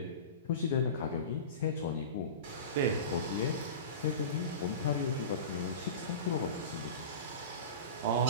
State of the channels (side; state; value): both; inverted; correlation -0.30